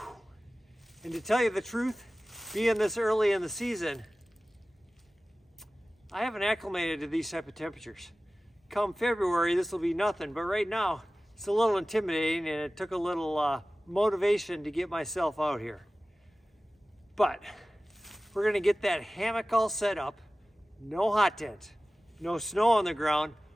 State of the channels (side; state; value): both; normal; correlation 0.97